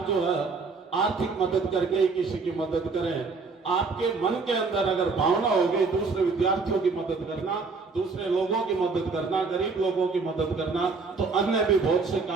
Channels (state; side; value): quieter; left; 4.4 dB